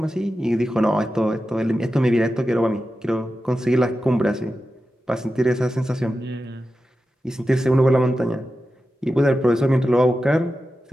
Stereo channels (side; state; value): both; normal; correlation 0.92